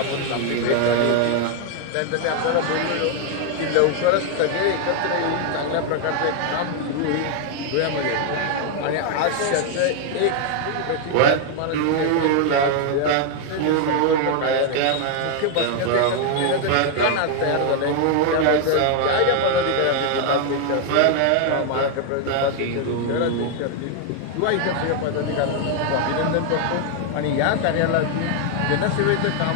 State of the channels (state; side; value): different; both; correlation 0.00